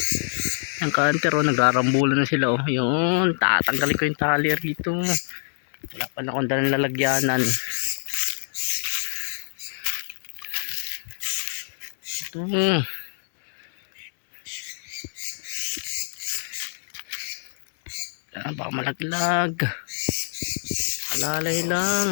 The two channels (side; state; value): right; silent; digital silence